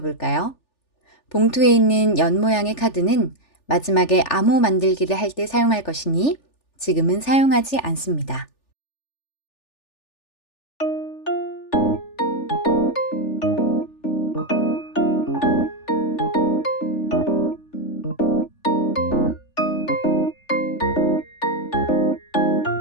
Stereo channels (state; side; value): late; right; 3.4 ms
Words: 볼까요? 봉투에 있는 연 모양의 카드는 마지막에 암호 만들기를 할 때 사용할 것이니 지금은 사용하지 않습니다.